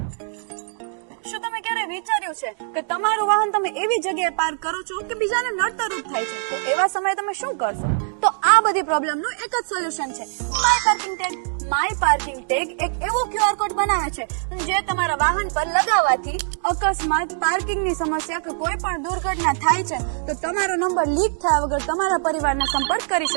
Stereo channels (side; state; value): left; silent; 62 dB below the other